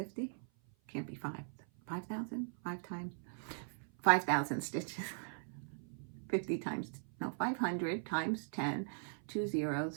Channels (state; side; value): silent; left; 51 dB below the other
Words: Can't be 5,000? 5,000 stitches. 50 times, no, 500 times 10, 2